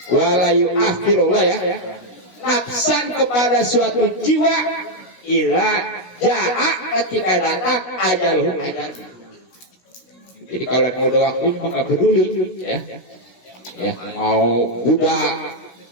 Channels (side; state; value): right; late; 16 ms